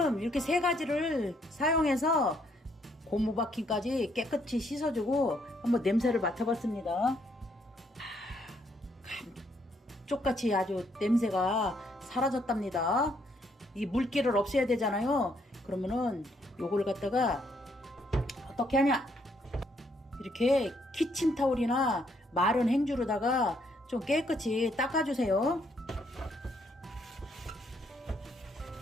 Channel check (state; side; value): normal; both; correlation 0.71